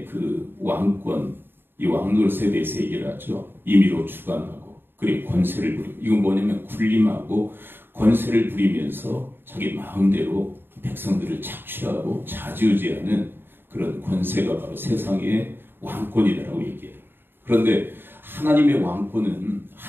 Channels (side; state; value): left; late; 0.10 ms